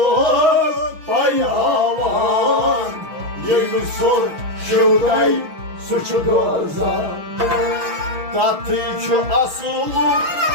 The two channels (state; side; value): late; left; 6.2 ms